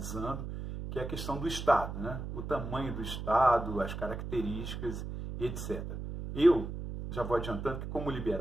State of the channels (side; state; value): right; noise; hum, 6 dB below the sound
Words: que é a questão do Estado, né? O tamanho do Estado, as características e etc. Eu já vou adiantando que, como